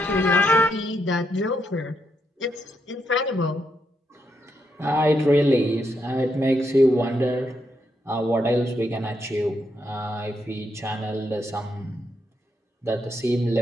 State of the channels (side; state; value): both; normal; correlation 0.79